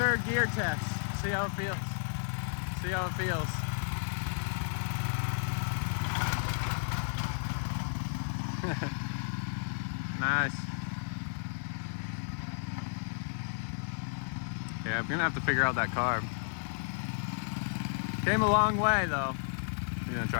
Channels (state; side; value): silent; right; digital silence